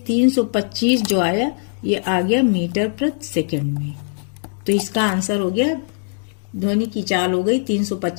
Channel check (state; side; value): silent; right; digital silence